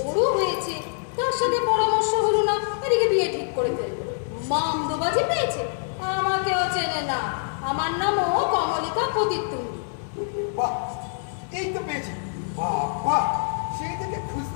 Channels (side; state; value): right; silent; digital silence